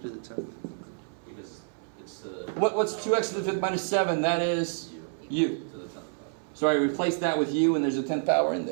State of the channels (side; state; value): left; silent; 59 dB below the other